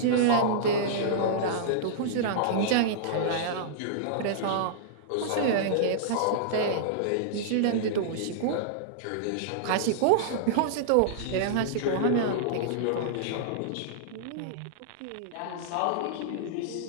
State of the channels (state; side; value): different; both; correlation -0.02